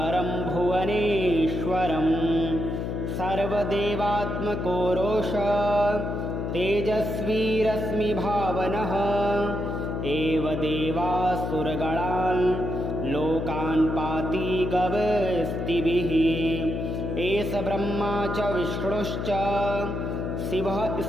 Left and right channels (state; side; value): noise; left; hum, 3 dB below the sound